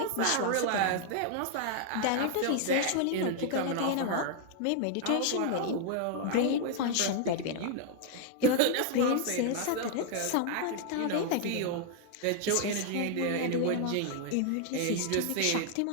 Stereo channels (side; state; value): both; different; correlation 0.00